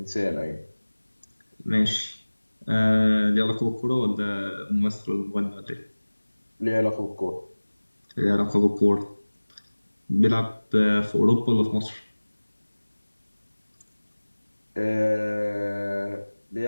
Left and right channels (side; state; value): both; inverted; correlation -1.00